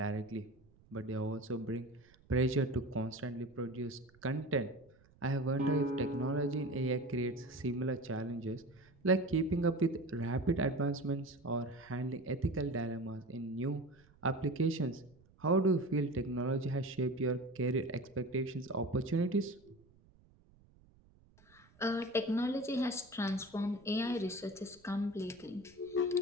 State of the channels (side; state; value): right; noise; rumble, 28 dB below the sound